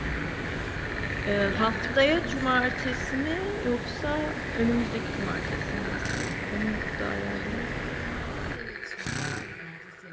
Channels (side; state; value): both; identical; correlation 1.00